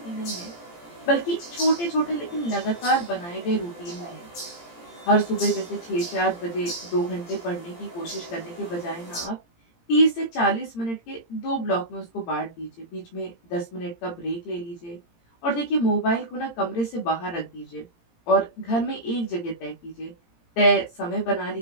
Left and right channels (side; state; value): right; late; 17 ms